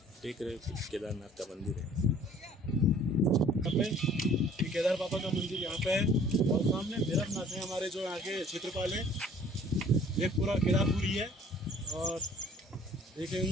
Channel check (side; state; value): both; normal; correlation 0.54